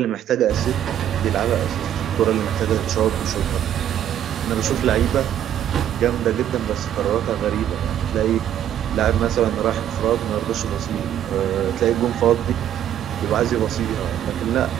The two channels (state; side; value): quieter; left; 10.7 dB